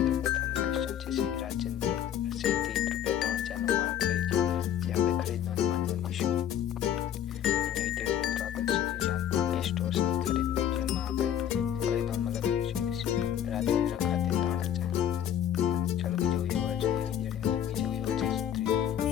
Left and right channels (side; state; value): right; quieter; 10.2 dB